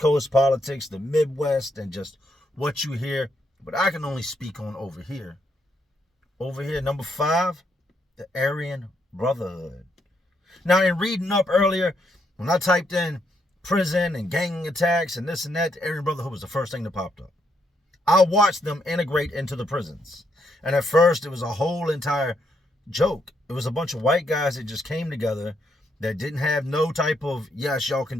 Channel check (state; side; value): normal; both; correlation 0.76